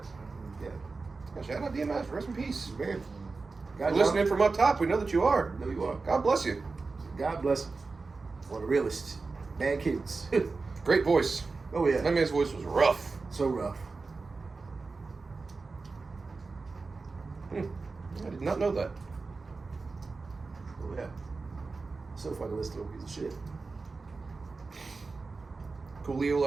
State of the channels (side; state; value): left; quieter; 4.1 dB